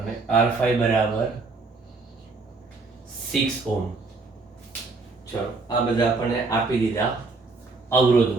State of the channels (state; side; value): quieter; left; 3.9 dB